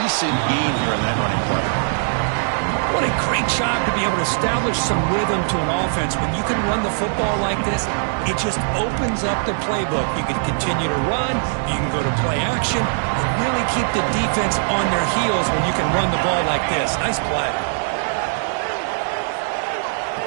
gain here in that running play. What a great job to be able to establish some rhythm to an offense. When you can run the football like this, it just opens up the playbook. You can continue to run, you can go to play action, and really keep the defense on their heels when you can run the ball like this. Nice play.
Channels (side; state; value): left; silent; 59 dB below the other